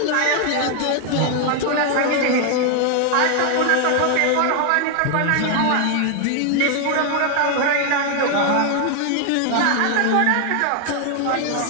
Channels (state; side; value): different; both; correlation 0.00